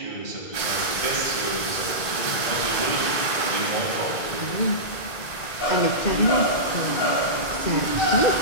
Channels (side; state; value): right; late; 1.5 ms